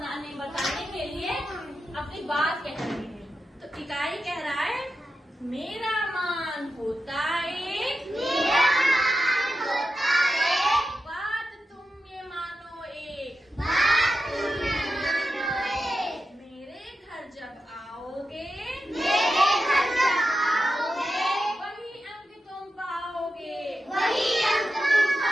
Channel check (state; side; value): normal; both; correlation 0.90